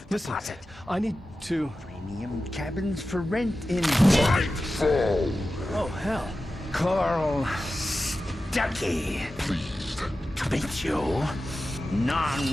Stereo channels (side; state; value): both; normal; correlation 0.93